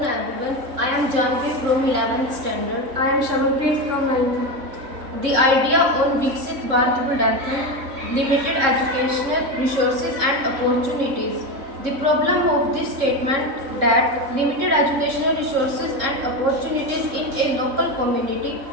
everyone. I am Janvi from 11th standard. I am Shamanpreet from 9th. The idea on Viksit Bharat Budanthan, limited educational resources and opportunities. The problem of this statement that limited educational resources and opportunities in a local community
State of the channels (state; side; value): late; left; 3.6 ms